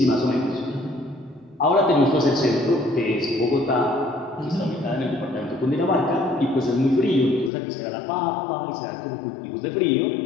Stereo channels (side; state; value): right; drops out; at 7.5 s